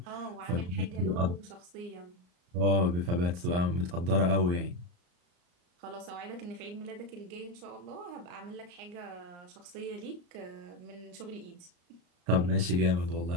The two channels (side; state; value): left; late; 34 ms